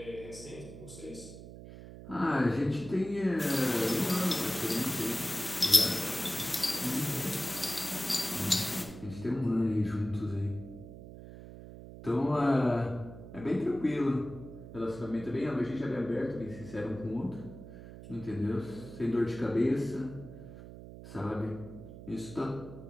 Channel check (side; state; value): right; noise; hum, 14 dB below the sound